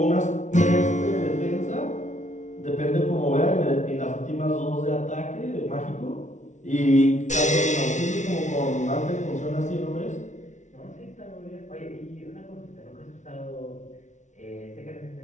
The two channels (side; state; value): right; late; 0.35 ms